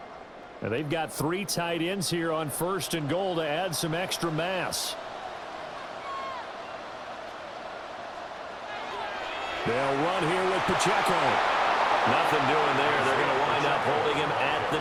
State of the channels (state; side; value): identical; both; correlation 1.00